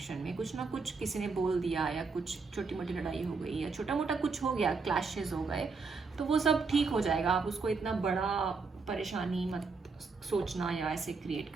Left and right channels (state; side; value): quieter; left; 4.5 dB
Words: में, कुछ ना कुछ किसी ने बोल दिया या कुछ छोटी मोटी लड़ाई हो गई या छोटा मोटा कुछ हो गया, क्लैशेस हो गए, तो वो सब ठीक हो जाएगा। आप उसको इतना बड़ा परेशानी मत सोचना या ऐसे क्रिएट